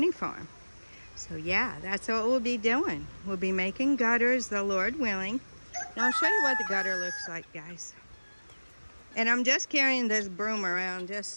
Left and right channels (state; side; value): inverted; both; correlation -1.00